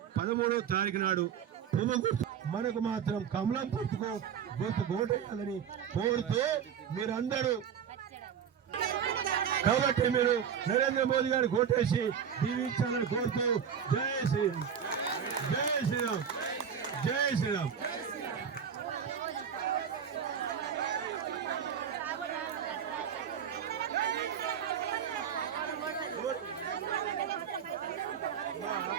13వ తారీఖు నాడు మనకు మాత్రం కమలం గుర్తుకు ఓటేయాలని కోరుతూ మీరందరూ, కాబట్టి మీరు నరేంద్ర మోదీ గారికి ఓటేసి దీవించాలని కోరుతూ జై శ్రీరామ్, జై శ్రీరామ్, జై శ్రీరామ్.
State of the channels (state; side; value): quieter; left; 7.9 dB